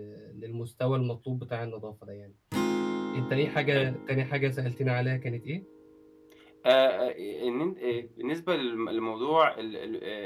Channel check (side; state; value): both; identical; correlation 1.00